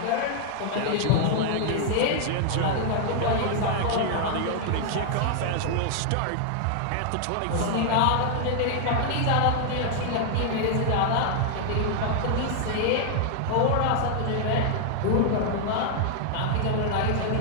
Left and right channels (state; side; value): different; both; correlation -0.01